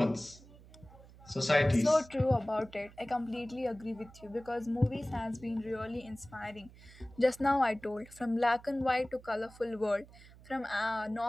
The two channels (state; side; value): noise; right; hum, 21 dB below the sound